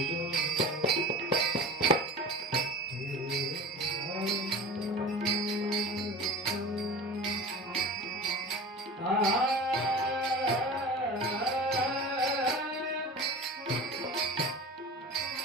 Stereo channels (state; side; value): normal; both; correlation 0.35